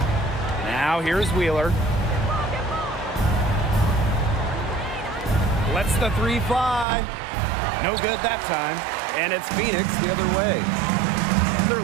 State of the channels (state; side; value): drops out; left; at 6.9 s